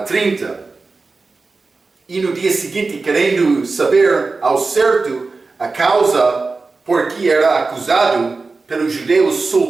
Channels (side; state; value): left; quieter; 3.9 dB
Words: 30. E no dia seguinte, querendo saber ao certo a causa por que era acusado pelos judeus,